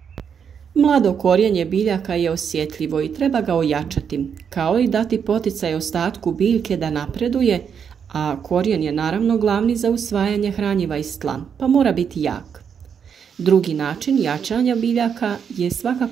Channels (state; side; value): quieter; left; 7.3 dB